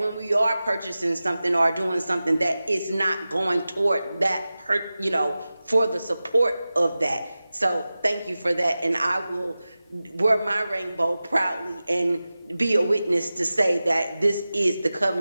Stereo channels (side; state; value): both; inverted; correlation -0.95